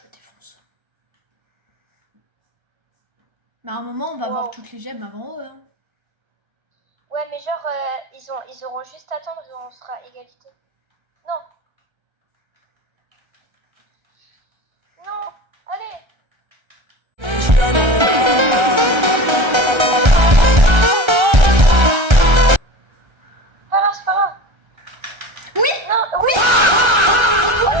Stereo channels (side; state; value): left; late; 1.3 ms